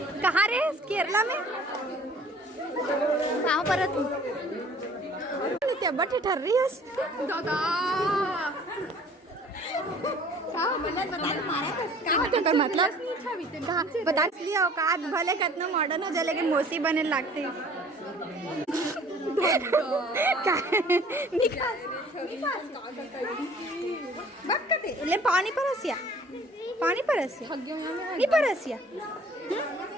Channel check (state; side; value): normal; both; correlation 0.52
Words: कहाँ रे केरला में कहाँ पर तू क्या बटे ठर रही है दादा मतलब बता लिया औकात भले कितना मॉडर्न हो जाए लेकिन मौसी बने लगते ले पानी परसिया नहीं परसिया